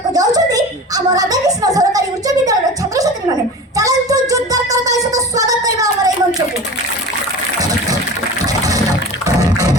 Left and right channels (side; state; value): both; normal; correlation 0.34